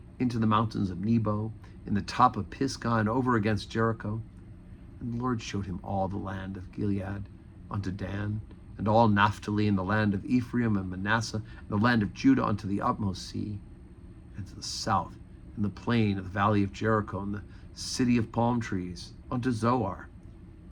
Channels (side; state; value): both; identical; correlation 1.00